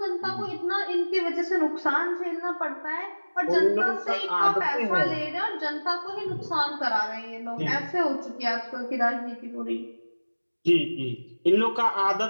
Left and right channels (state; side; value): inverted; both; correlation -1.00